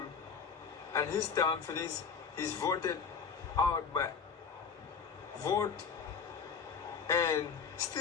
and his term finishes, he's voted out by vote, and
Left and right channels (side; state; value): right; quieter; 6.0 dB